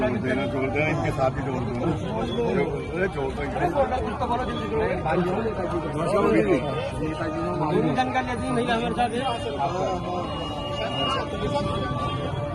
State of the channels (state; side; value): identical; both; correlation 1.00